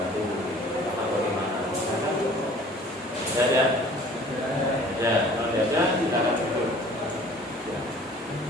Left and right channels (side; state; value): both; normal; correlation 0.50